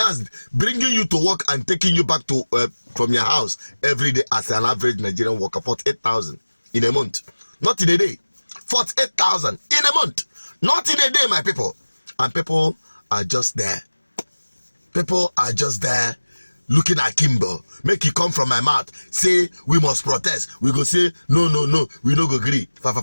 bringing you to work and taking you back to from your house every day as an average Nigerian worker. 48,000 in a month, not in a day. 48,000 in a month, not in a day, my people. And people are just there. People are just there looking at Kimbo. Make it come from my mouth. Say we must protest. We go say no. We no go agree.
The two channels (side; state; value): both; inverted; correlation -1.00